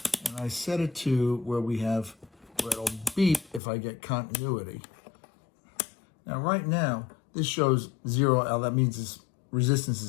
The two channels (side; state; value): right; drops out; at 3.6 s